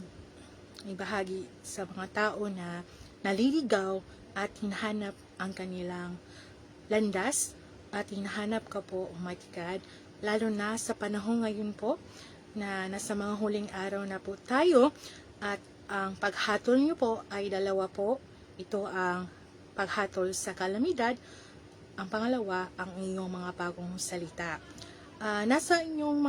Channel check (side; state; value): both; identical; correlation 1.00